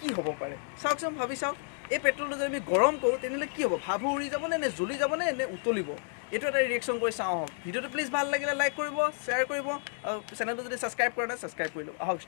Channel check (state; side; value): silent; right; 57 dB below the other